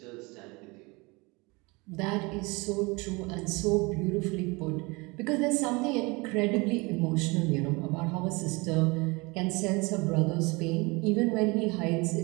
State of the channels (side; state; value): left; quieter; 26.1 dB